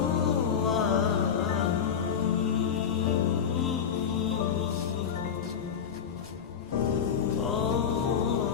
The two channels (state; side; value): quieter; right; 7.6 dB